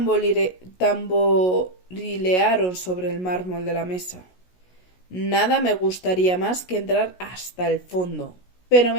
tamborilearon sobre el mármol de la mesa. Nada me gustaría más que entrar hasta el fondo, pero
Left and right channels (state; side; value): late; right; 16 ms